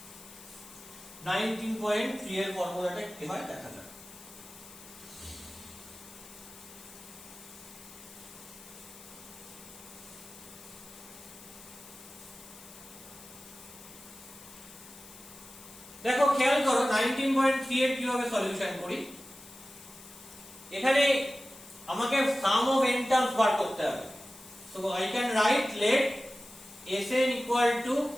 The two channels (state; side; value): noise; left; hiss, 18 dB below the sound